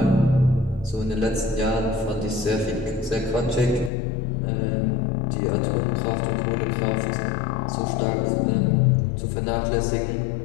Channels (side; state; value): right; drops out; at 3.9 s